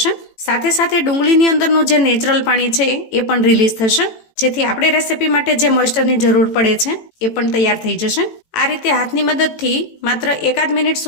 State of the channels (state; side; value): late; right; 18 ms